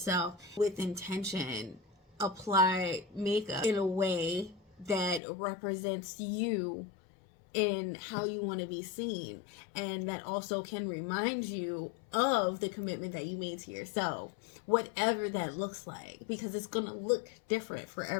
with intention. Apply makeup in a way that represents you in how you want to be seen, and that also can remind you of the commitment that you made to yourself, whatever that looks like, because it's going to look different for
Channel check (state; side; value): drops out; right; at 5.2 s